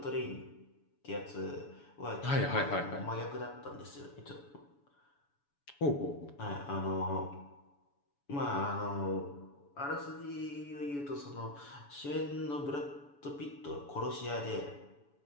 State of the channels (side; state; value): right; late; 7.0 ms